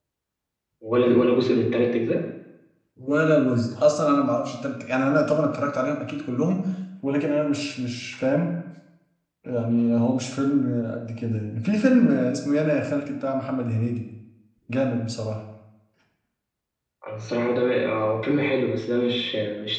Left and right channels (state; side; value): identical; both; correlation 1.00